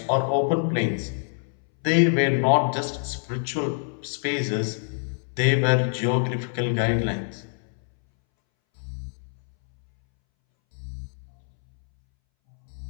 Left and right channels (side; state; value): right; silent; 61 dB below the other